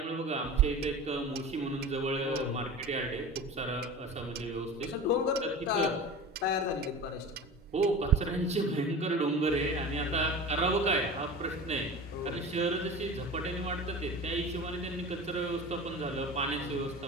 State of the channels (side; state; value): both; normal; correlation 0.34